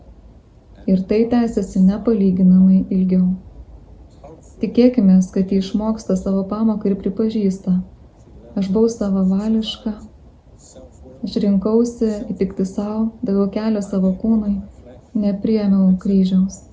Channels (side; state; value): both; identical; correlation 1.00